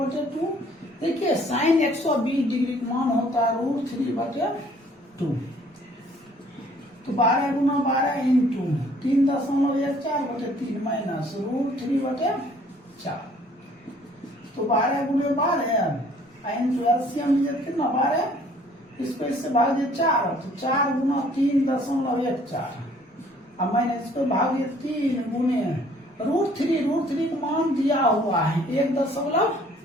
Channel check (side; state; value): both; normal; correlation 0.58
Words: देखिए साइन 120 डिग्री का मान होता है √3/2। तो 12 गुना 12 इंटू 3.14 बटे 3 माइनस √3/4। तो 12 गुने 12 इंटू एलसीएम कितना 12, इसको इससे भाग दिए 4, तो 4 गुना 3.14 अब मैंने इसको भाग दिया 3 गुने √3 का मान दिया हुआ है